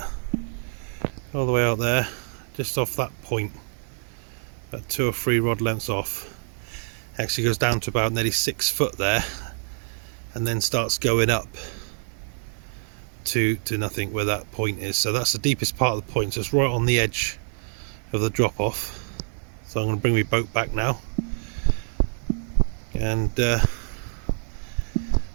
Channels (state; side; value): silent; left; 60 dB below the other